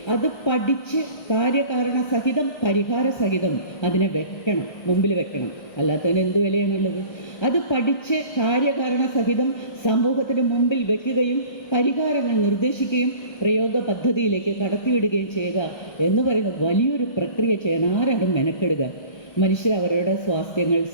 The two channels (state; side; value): late; right; 1.6 ms